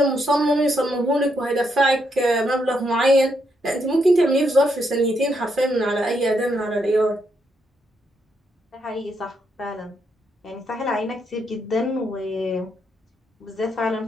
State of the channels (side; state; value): both; normal; correlation 0.78